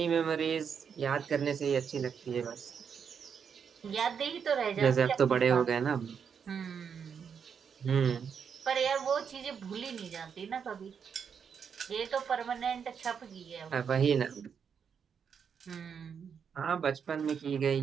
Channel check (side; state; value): left; quieter; 7.0 dB